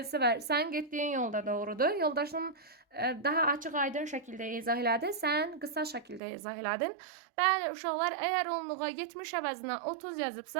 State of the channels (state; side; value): drops out; left; at 6.2 s